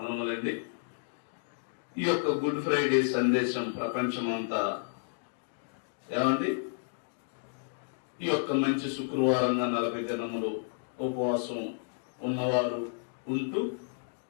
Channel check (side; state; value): right; silent; digital silence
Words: ఈ యొక్క గుడ్ ఫ్రైడే సందేశం ప్రపంచమంతా ఏమండి ఈ యొక్క మంచి శుక్రవారంగా 40 దినములు ఉపవాసం ఉన్నవారు ఉంటూ